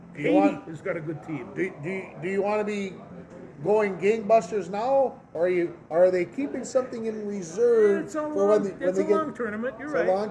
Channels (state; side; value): identical; both; correlation 1.00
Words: Haiti has got a good team. Do you want to be going gangbusters now, or are they keeping something in reserve when they get? It's a long tournament. You're right. It's a